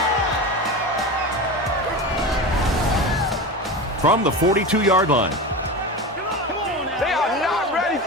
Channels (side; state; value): both; normal; correlation 0.26